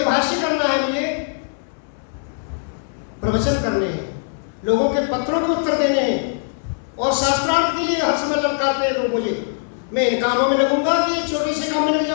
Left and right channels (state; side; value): silent; right; digital silence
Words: भाष्य करना है, मुझे प्रवचन करने हैं, लोगों के पत्रों के उत्तर देने हैं और शास्त्रार्थ के लिए हर समय ललकारते हैं लोग मुझे। मैं इन कामों में लगूंगा कि एक छोटे से काम में लग